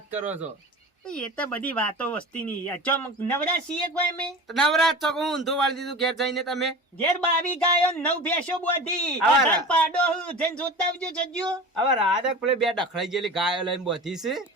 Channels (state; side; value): normal; both; correlation 0.34